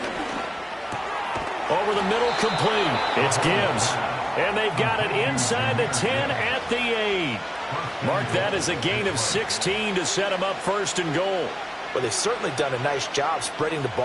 Over the middle, complete. It's Gibbs. And they've got it inside the 10 at the 8. Mark that as a gain of 16 to set him up first and goal. Well, they've certainly done a nice job spreading the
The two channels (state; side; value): identical; both; correlation 1.00